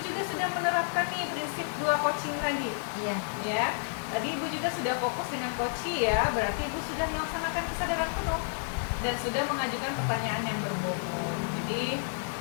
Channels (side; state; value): right; silent; digital silence